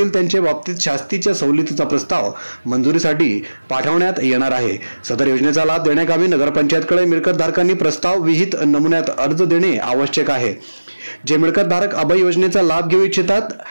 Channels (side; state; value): both; inverted; correlation -1.00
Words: त्यांच्या बाबतीत शास्तीच्या सवलतीचा प्रस्ताव मंजुरीसाठी पाठवण्यात येणार आहे। सदर योजनेचा लाभ देण्याकामी नगरपंचायतकडे मिळकत धारकांनी प्रस्ताव विहित नमुन्यात अर्ज देणे आवश्यक आहे। जे मिळकत धारक अभय योजनेचा लाभ घेऊ इच्छितात